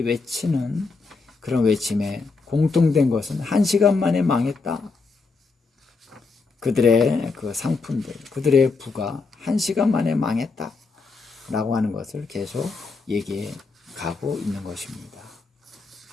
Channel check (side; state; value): right; quieter; 4.2 dB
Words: 외치는 그런 외침에 공통된 것은 한 시간 만에 망했다. 그들의 그 상품들, 그들의 부가 한 시간 만에 망했다. 라고 하는 것을 계속 얘기해 가고 있는 것입니다.